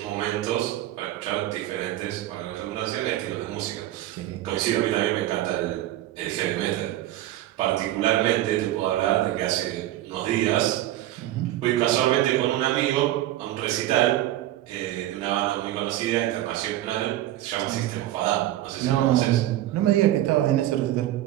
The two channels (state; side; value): quieter; left; 14.2 dB